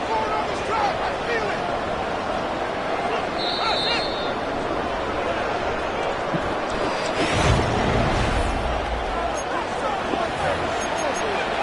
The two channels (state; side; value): identical; both; correlation 1.00